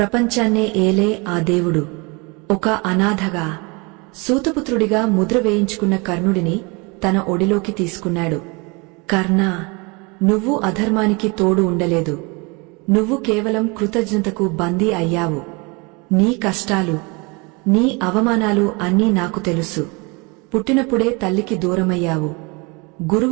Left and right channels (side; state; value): left; quieter; 28.7 dB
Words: ఏలే ఆ దేవుడు ఒక అనాథగా, సూతపుత్రుడిగా ముద్ర వేయించుకున్న కర్ణుడిని తన ఒడిలోకి తీసుకున్నాడు. కర్ణా, నువ్వు అధర్మానికి తోడు ఉండలేదు. నువ్వు కేవలం కృతజ్ఞతకు బందీ అయ్యావు. నీ కష్టాలు, నీ అవమానాలు అన్నీ నాకు తెలుసు. పుట్టినప్పుడే తల్లికి దూరమయ్యావు,